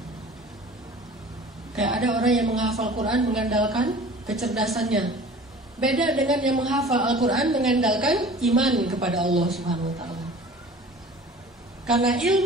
Kayak ada orang yang menghafal Quran mengandalkan kecerdasannya, beda dengan yang menghafal Al-Quran mengandalkan iman kepada Allah Subhanahu wa Ta'ala. Karena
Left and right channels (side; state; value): both; normal; correlation 0.44